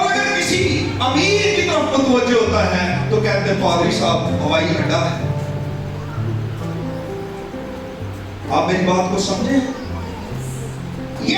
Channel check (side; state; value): both; identical; correlation 1.00